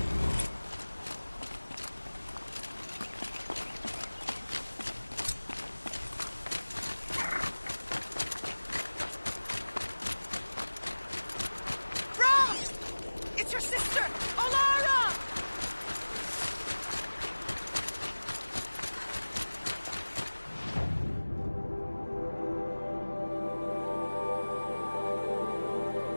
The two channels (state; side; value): inverted; both; correlation -1.00